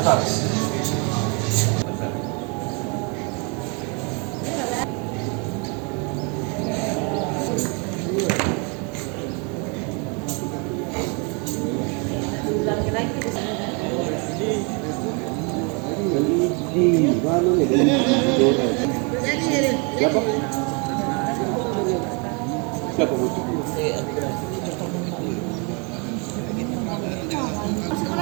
Siapa? Siapa bu? Masuk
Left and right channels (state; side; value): quieter; left; 33.5 dB